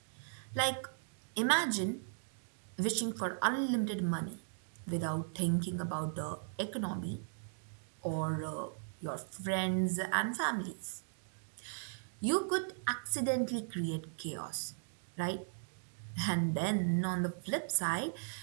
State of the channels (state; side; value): silent; left; digital silence